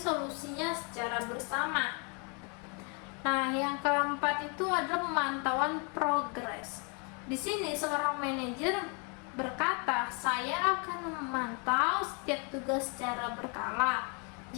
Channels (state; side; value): quieter; right; 35.0 dB